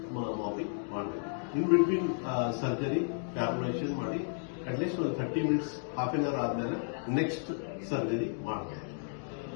ಮಾಪಿಂಗ್ ಮಾಡಬೇಕು. ಇನ್ ಬಿಟ್ವೀನ್ ಸರ್ಜರಿ ಕ್ಯಾಲ್ಕುಲೇಷನ್ ಮಾಡಿ ಅಟ್ಲೀಸ್ಟ್ ಒಂದು 30 ಮಿನಿಟ್ಸ್ ಹಾಫ್ ಎನ್ ಅವರ್ ಆದ್ಮೇಲೆ ನೆಕ್ಸ್ಟ್ ಸರ್ಜರಿ ಮಾಡಬೇಕು.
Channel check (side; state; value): right; silent; digital silence